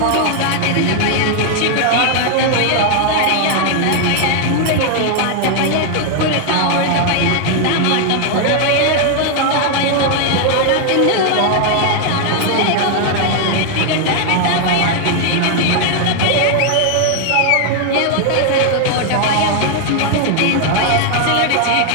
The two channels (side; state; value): both; different; correlation 0.00